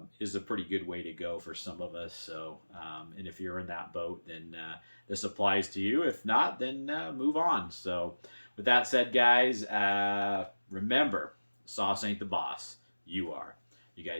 is a pretty good way to go for some of us. So, and if you're in that boat, then this applies to you. If not, then move on. So, with that said, guys, remember, sauce ain't the boss. You are. You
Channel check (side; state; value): both; inverted; correlation -1.00